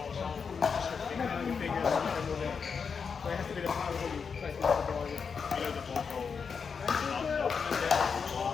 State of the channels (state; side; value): quieter; right; 5.9 dB